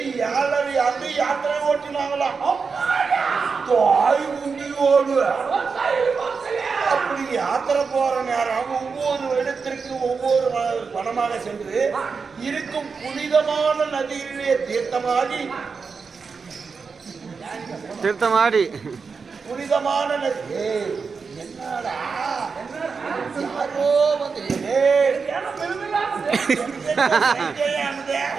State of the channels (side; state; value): left; quieter; 5.1 dB